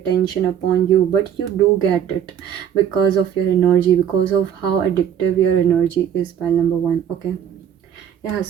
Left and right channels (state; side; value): quieter; left; 9.2 dB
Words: upon you, but you do get it because of your energy, because of how addictive your energy is, pile number one. Okay, yeah,